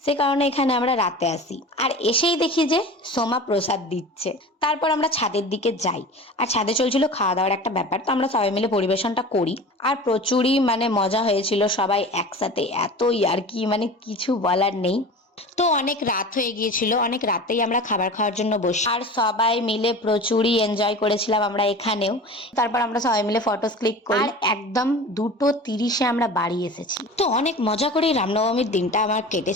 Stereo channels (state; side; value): normal; both; correlation 0.36